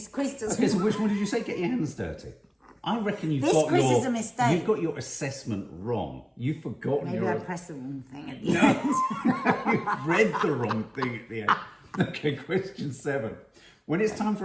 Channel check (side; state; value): both; identical; correlation 1.00